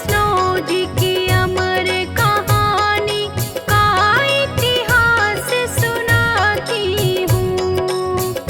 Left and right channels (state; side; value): identical; both; correlation 1.00